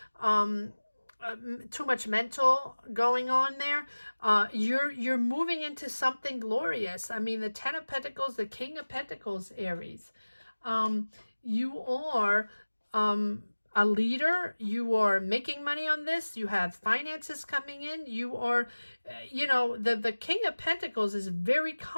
too much mental going on there. You're moving into something glorious. I mean, the Ten of Pentacles, the King of Pentacles, Aries. You are a leader. You are making money on this. You have finances coming in. You are, you know, the King of Pentacles is very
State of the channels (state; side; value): inverted; both; correlation -1.00